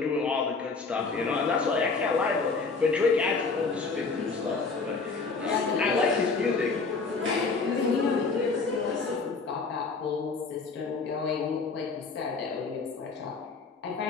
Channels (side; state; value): right; quieter; 4.3 dB